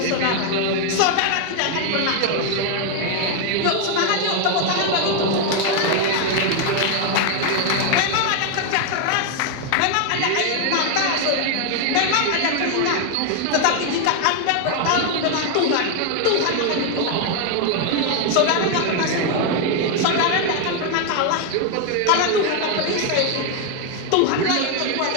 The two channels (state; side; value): different; both; correlation 0.01